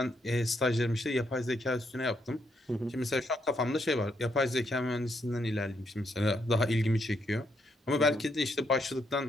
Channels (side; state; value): both; normal; correlation 0.76